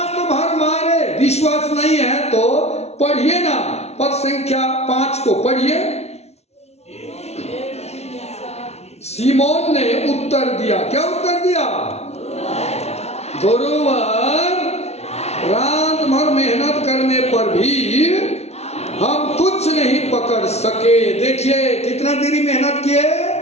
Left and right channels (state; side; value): late; right; 0.31 ms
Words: भर मारे। विश्वास नहीं है तो पढ़िए ना, पद संख्या 5 को पढ़िए। सीमोन ने उत्तर दिया, क्या उत्तर दिया? गुरुवर, रात भर मेहनत करने पर भी हम कुछ नहीं पकड़ सके। देखिए कितना देरी मेहनत किए,